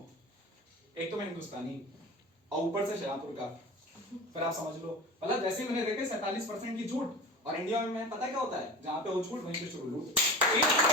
एक तो मैं हिंदुस्तानी और ऊपर से शाहपुर का, फिर आप समझ लो मतलब जैसे मैंने देखे 47% की छूट, और इंडिया में पता क्या होता है, जहां पे वो छूट वहीं पे शुरू लूट।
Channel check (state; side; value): normal; both; correlation 0.33